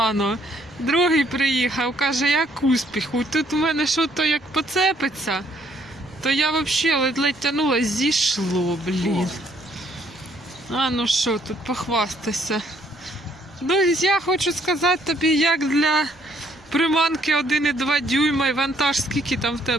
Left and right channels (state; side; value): noise; right; rumble, 28 dB below the sound